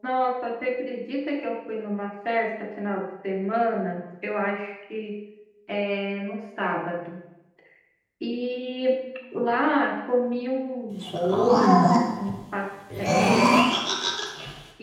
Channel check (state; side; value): identical; both; correlation 1.00